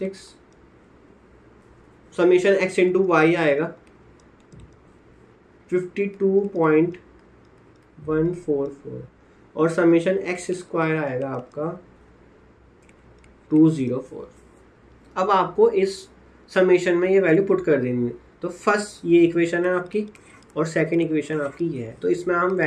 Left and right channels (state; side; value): identical; both; correlation 1.00